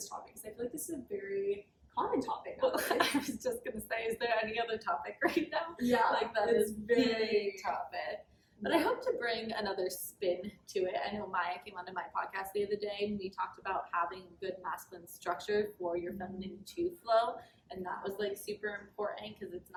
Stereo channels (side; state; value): both; identical; correlation 1.00